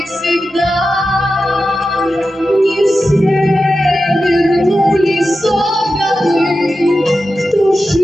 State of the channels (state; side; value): normal; both; correlation 0.92